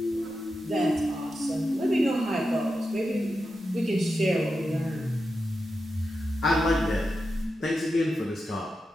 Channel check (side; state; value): both; normal; correlation 0.90